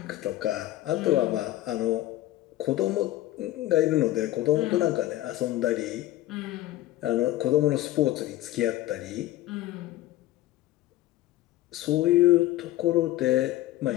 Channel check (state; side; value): quieter; right; 15.3 dB